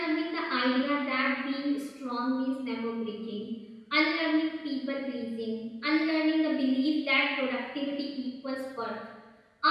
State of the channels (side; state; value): both; identical; correlation 1.00